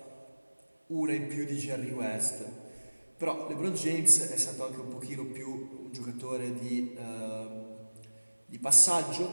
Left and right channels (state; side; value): inverted; both; correlation -1.00